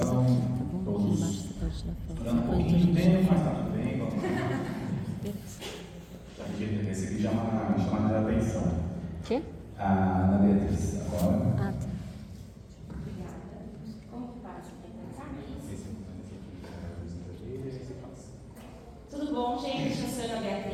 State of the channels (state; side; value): identical; both; correlation 1.00